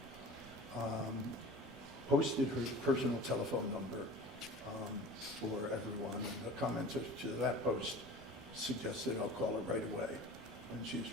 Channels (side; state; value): both; normal; correlation 0.39